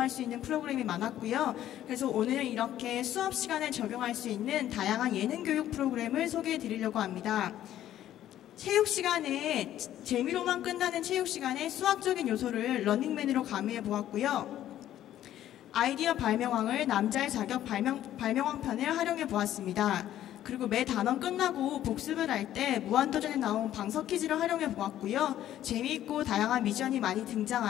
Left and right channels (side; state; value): right; quieter; 12.2 dB